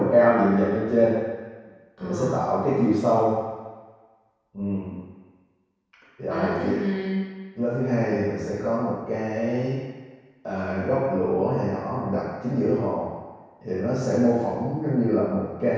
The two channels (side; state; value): both; identical; correlation 1.00